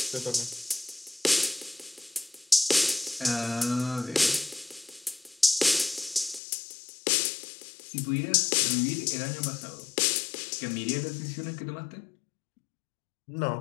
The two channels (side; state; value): right; drops out; at 6.4 s